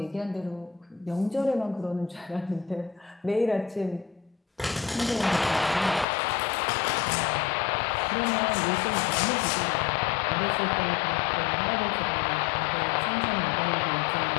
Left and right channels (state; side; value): drops out; right; at 6.1 s